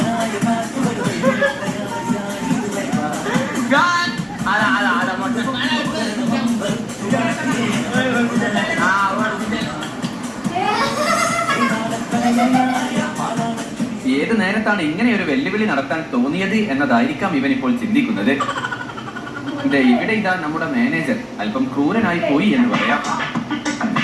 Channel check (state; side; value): identical; both; correlation 1.00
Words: ഏത് നേരത്താണ് ഇങ്ങനെ ഒരു വെല്ലുവിളി നടത്താൻ തോന്നിയത് എന്നതായിരിക്കാം ഇവൻ ഇപ്പോൾ ചിന്തിക്കുന്നത്. ഇവിടെ ഇതാ നമ്മുടെ മാനേജർ അല്പം ക്രൂരനായി പോയി എന്ന് പറയാം.